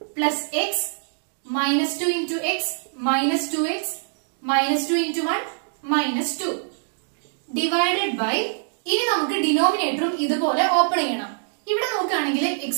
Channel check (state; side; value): silent; left; digital silence